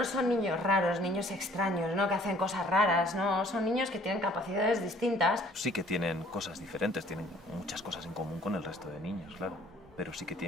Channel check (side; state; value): both; normal; correlation 0.56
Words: son niños raros, niños extraños, ¿no? Que hacen cosas raras, ¿no? Son niños que tienen capacidades distintas. Sí que tienen cosas diferentes, tienen muchas cosas en común con el resto de niños, claro, pero sí que